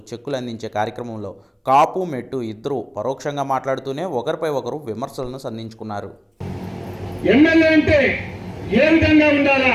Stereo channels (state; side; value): identical; both; correlation 1.00